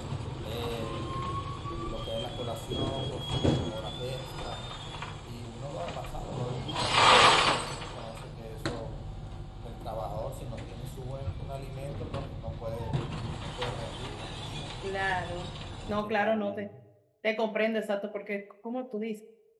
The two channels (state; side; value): identical; both; correlation 1.00